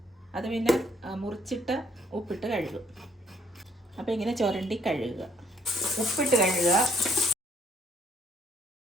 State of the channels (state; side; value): normal; both; correlation 0.66